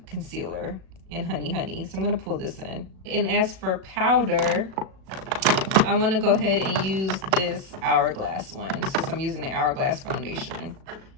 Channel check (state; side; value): late; left; 37 ms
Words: Concealer in Honey Honey, so I'm going to pull this in. And as for powder, I want to go ahead and use this Hourglass one since I'm using the Hourglass foundation.